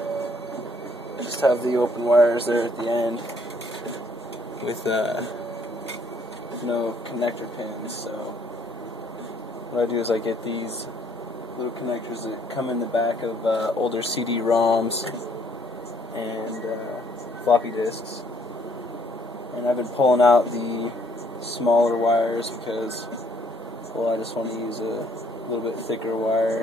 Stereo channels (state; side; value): normal; both; correlation 0.65